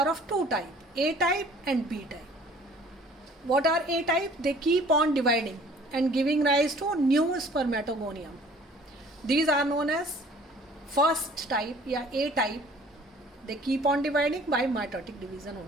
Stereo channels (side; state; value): both; normal; correlation 0.52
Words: of 2 types, A type and B type. What are A type? They keep on dividing and giving rise to new spermatogonium. These are known as first type, A type. They keep on dividing by mitotic division